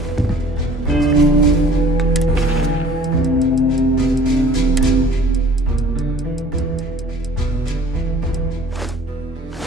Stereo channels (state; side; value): normal; both; correlation 0.51